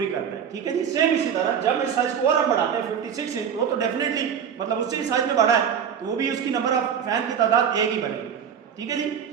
करता है। ठीक है जी, सेम इसी तरह जब इस साइज को और हम बढ़ाते हैं 56 इंच, वो तो डेफिनेटली मतलब उससे ही साइज में बढ़ा है तो वो भी उसकी नंबर ऑफ फैन की तादाद एक ही बनेगी। ठीक है जी,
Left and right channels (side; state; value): left; quieter; 7.8 dB